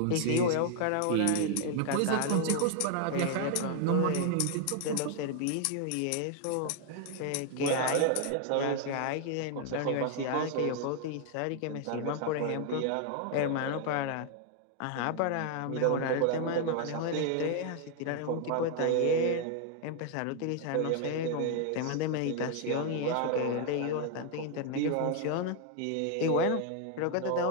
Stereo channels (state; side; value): different; both; correlation 0.00